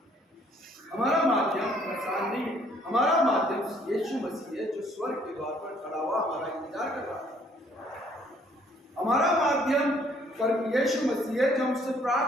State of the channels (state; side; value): normal; both; correlation 0.62